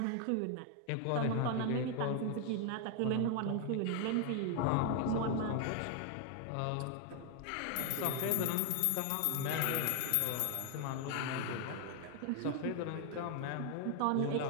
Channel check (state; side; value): different; both; correlation 0.00